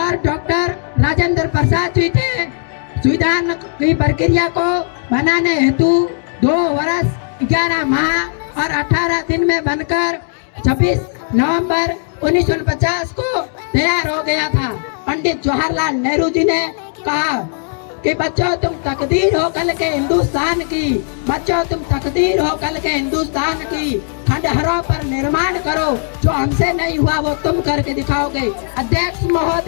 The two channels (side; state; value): right; silent; 58 dB below the other